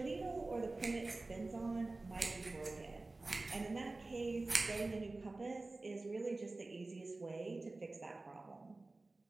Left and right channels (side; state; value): left; quieter; 3.2 dB